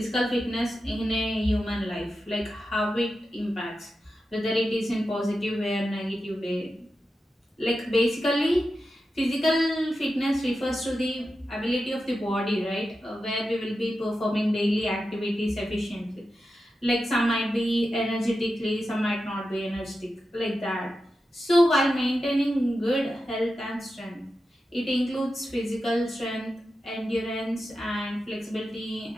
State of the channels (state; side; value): normal; both; correlation 0.90